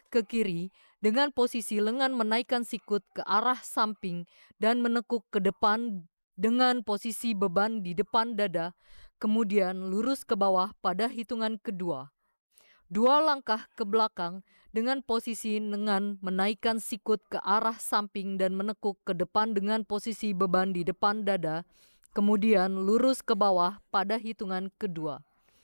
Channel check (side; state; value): both; inverted; correlation -1.00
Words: ke kiri dengan posisi lengan menaikkan sikut ke arah samping dan menekuk ke depan dengan posisi beban di depan dada, kemudian lurus ke bawah pada hitungan kedua. 2 langkah ke belakang dengan posisi lengan menaikkan sikut ke arah samping dan menekuk ke depan dengan posisi beban di depan dada, kemudian lurus ke bawah pada hitungan kedua.